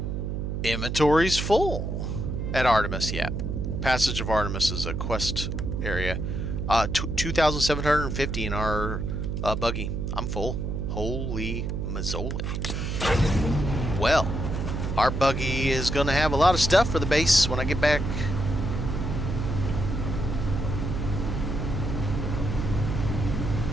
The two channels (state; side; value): noise; right; hum, 3 dB below the sound